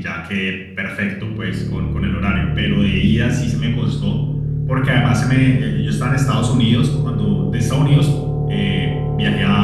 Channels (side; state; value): both; identical; correlation 1.00